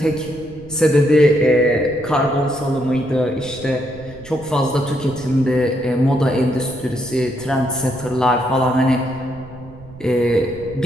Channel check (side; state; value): right; noise; rumble, 19 dB below the sound